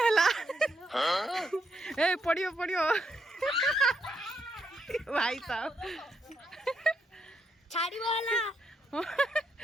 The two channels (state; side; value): normal; both; correlation 0.78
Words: ए पड़ियो भाई साहब छाड़ी वाला